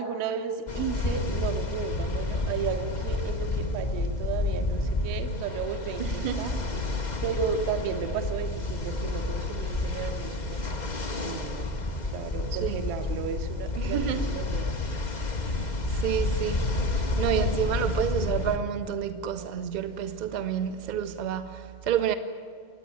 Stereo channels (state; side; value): late; right; 2.1 ms